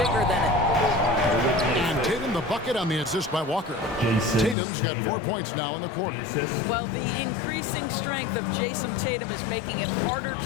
than it. And Tatum the bucket on the assist by Walker. Tatum's got 4 points now in the quarter. Well, the increasing strength of Jason Tatum is making it harder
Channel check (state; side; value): drops out; right; at 4.5 s